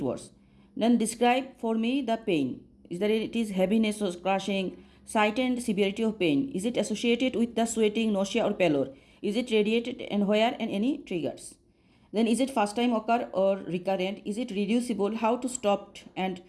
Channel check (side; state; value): both; identical; correlation 1.00